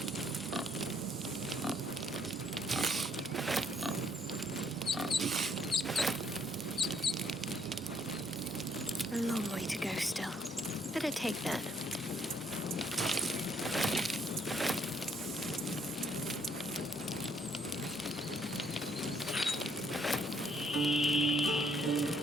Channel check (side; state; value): both; normal; correlation 0.68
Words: A long way to go still. Better take that.